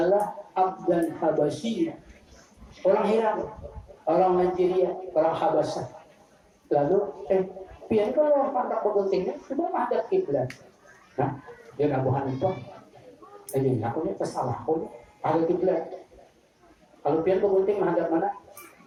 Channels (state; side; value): identical; both; correlation 1.00